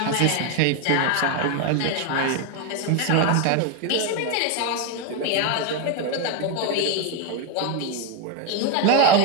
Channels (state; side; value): different; both; correlation 0.01